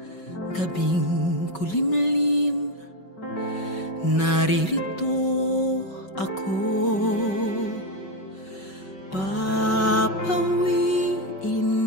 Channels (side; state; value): right; late; 5.3 ms